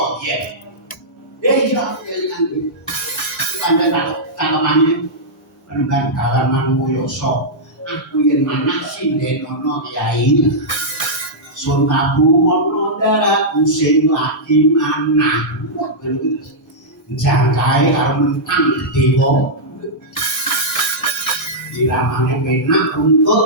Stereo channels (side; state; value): both; normal; correlation -0.10